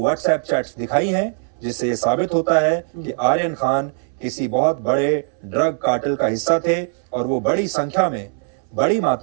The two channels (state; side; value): silent; left; 64 dB below the other